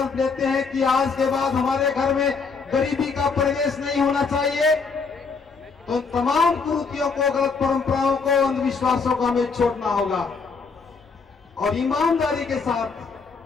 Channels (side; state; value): right; quieter; 4.9 dB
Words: लेते हैं कि आज के बाद हमारे घर में गरीबी का प्रवेश नहीं होना चाहिए, तो तमाम कुरीतियों को, गलत परंपराओं को, अंधविश्वासों को हमें छोड़ना होगा और ईमानदारी के साथ